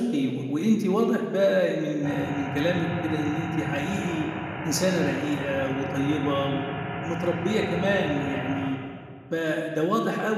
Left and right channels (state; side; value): identical; both; correlation 1.00